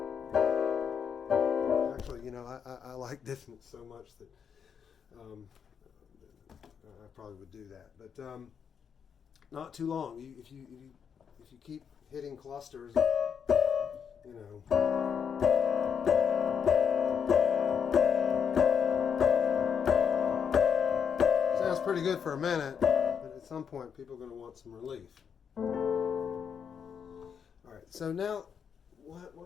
Actually, I like dissonance so much that I probably would do that, but not too long. If you keep hitting clusters, sounds pretty good for a minute. At some point, people are going to want some relief. All right, so now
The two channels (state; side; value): quieter; right; 7.2 dB